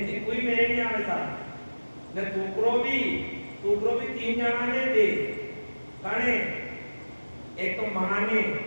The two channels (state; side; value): inverted; both; correlation -1.00